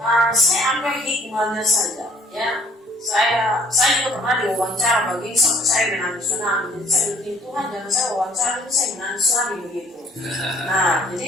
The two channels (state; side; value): normal; both; correlation 0.58